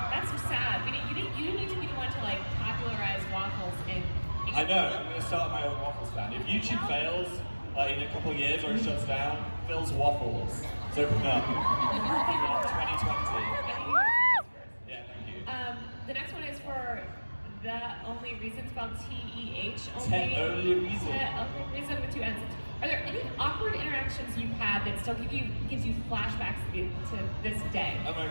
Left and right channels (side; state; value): both; inverted; correlation -1.00